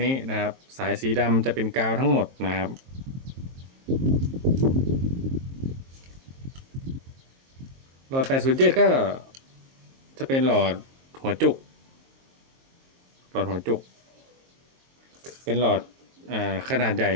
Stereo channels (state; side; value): late; left; 22 ms